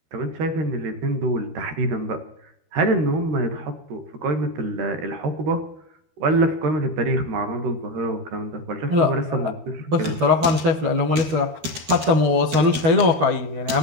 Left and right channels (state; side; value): late; left; 13 ms